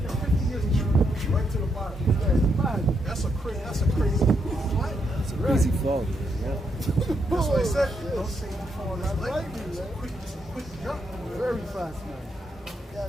years to drop right to the bottom. That's a crazy. That's a Crazy fall, man. Yeah. That's what I said. Don't say you fall as lightning. It's a quick jump. Very fast, man.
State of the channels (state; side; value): normal; both; correlation 0.79